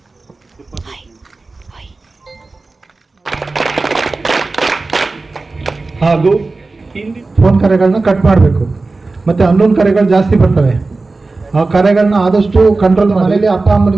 ಹಾಗೂ ಫೋನ್ ಕರೆಗಳನ್ನ ಕಟ್ ಮಾಡಬೇಕು. ಮತ್ತು ಅನ್ನೋನ್ ಕರೆಗಳು ಜಾಸ್ತಿ ಬರ್ತವೆ. ಆ ಕರೆಗಳನ್ನ ಆದಷ್ಟು ಕಂಟ್ರೋಲ್. ಮನೇಲಿ ಅಪ್ಪ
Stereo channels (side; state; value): left; quieter; 3.6 dB